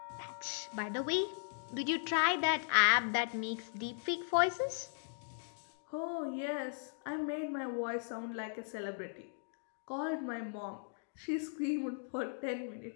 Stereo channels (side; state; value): right; silent; digital silence